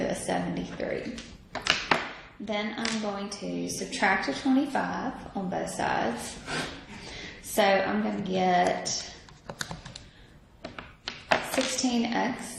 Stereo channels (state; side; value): identical; both; correlation 1.00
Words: a 73. Then I'm going to subtract a 25 on both sides. So I'm going to get